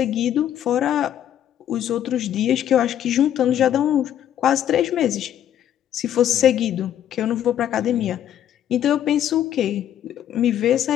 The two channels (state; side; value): quieter; right; 10.7 dB